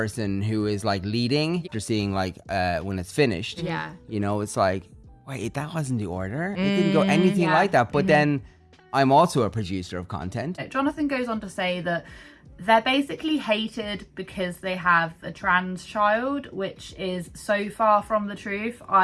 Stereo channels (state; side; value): identical; both; correlation 1.00